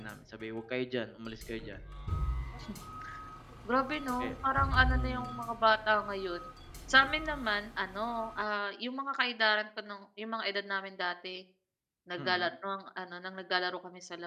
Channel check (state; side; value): identical; both; correlation 1.00